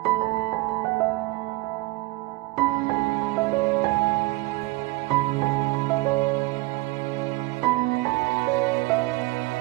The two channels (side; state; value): left; quieter; 21.3 dB